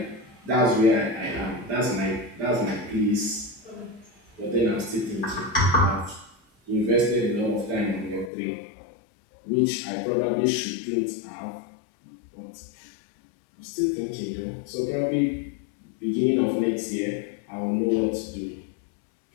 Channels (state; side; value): drops out; right; at 8.3 s